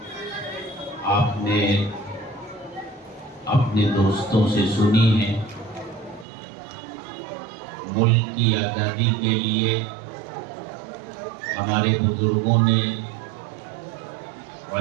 آپ نے اپنے دوستوں سے سنی ہیں۔ ملک کی آزادی کے لیے ہمارے بزرگوں نے،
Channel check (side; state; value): left; drops out; at 6.2 s